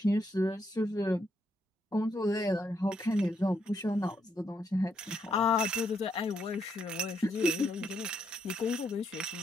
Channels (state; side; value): normal; both; correlation 0.76